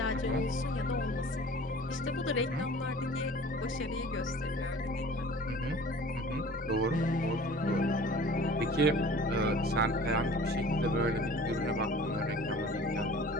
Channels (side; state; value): both; normal; correlation 0.45